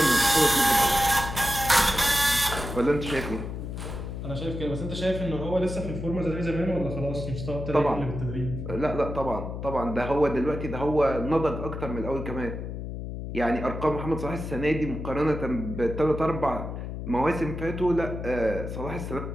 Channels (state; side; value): noise; left; hum, 6 dB below the sound